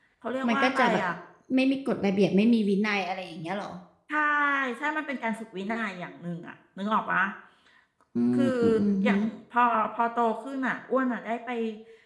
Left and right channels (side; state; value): both; identical; correlation 1.00